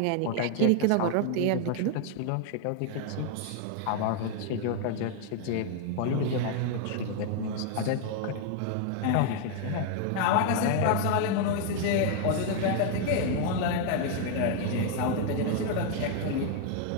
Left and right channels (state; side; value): different; both; correlation 0.00